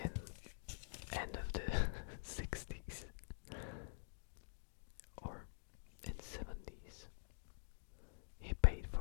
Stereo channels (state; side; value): silent; right; digital silence